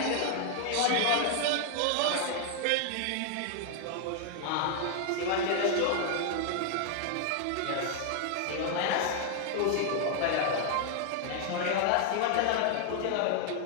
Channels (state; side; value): different; both; correlation 0.00